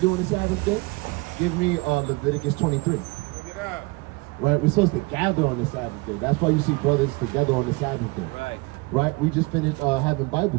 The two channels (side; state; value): left; quieter; 25.8 dB